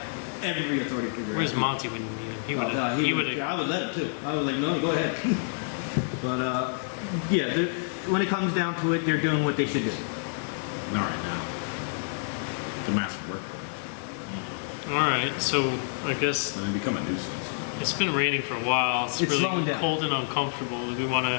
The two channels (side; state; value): right; silent; digital silence